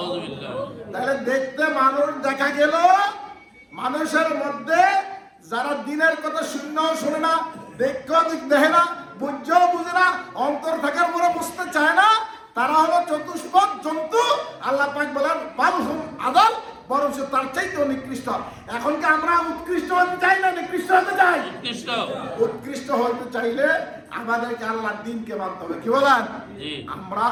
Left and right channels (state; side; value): identical; both; correlation 1.00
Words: তাহলে দেখতে মানুষ দেখা গেল, মানুষের মধ্যে যারা দিনের কথা শুনলেও শোনে না, দেখেও দেখে না, বুঝেও বুঝে না, অন্তর থাকার পরে বুঝতে চায় না, তারা হলো চতুষ্পদ জন্তু। আল্লাহ পাক বলেন বাল হুম আদাল, বরং তার চাইতেও নিকৃষ্ট। এখন কি আমরা উৎকৃষ্ট হতে চাই না নিকৃষ্ট হতে চাই? উৎকৃষ্ট উৎকৃষ্ট হতে চাইলে আমাদেরকে আল্লাহর দিনকে মানতে হবে। কি বলেন? জি আমরা